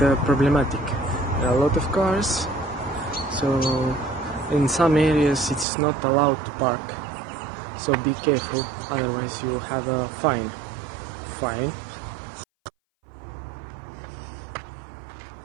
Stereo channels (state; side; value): drops out; left; at 5.7 s